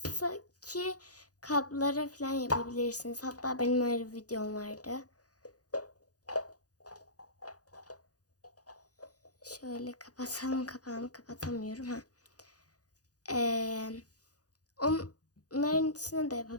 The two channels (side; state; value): right; late; 0.67 ms